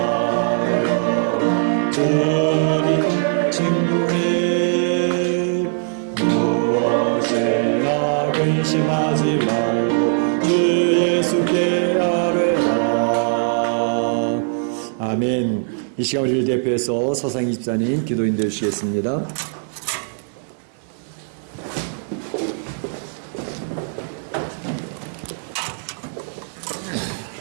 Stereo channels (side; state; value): left; silent; 65 dB below the other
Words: 주님 친구해 무엇이나 근심하지 말고 주 예수께 아뢰라. 아멘. 이 시간 우리를 대표해서 서상희 집사님 기도인 되시겠습니다.